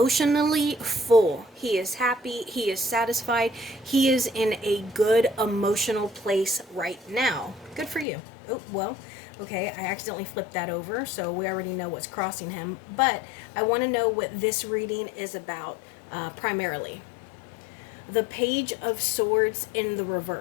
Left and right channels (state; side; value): drops out; right; at 8.1 s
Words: full. He is happy. He is satisfied. He is in a good emotional place right now. Good for you. Oh, well, okay, I accidentally flipped that over, so we already know what's crossing him. But I want to know what this reading is about primarily. The Page of Swords in the